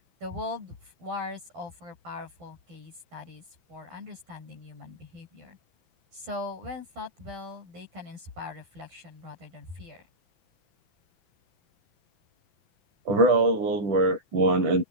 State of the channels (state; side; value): late; left; 6.0 ms